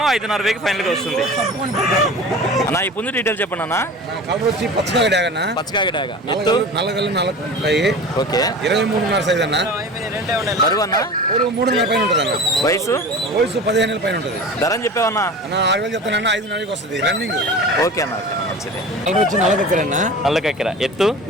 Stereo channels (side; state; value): both; normal; correlation 0.36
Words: 5,500 ఫైనల్గా వస్తుంది అన్న. ఈ ముందు డీటెయిల్ చెప్పండి అన్న. పచ్చకాయ డాగ. ఎత్తు? 4 ఓకే. 23.5 సైజ్ అన్న. బరువు అన్న? 3.5 పైన ఉంటుంది అన్న. వయసు? వయసు 15 పైన ఉంటుంది ధరని చెప్పావన్నా? అన్న. 6000 చెప్తానన్న, 5,500 వస్తుంది రన్నింగ్. ఓకే అన్న, ఓకే అన్న, మంచిది. కలర్ వచ్చి నల్లకక్కరన్న. నల్లకక్కెర. ఎత్తు?